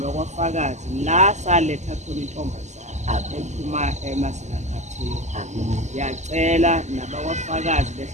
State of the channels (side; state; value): left; late; 0.34 ms